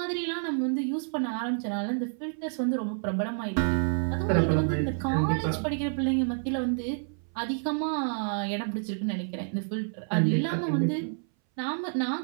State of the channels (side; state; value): left; silent; 59 dB below the other